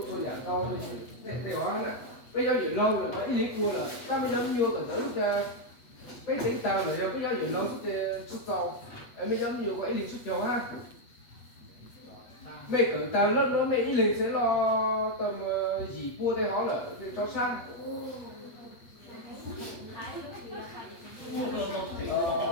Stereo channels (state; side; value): late; right; 8.2 ms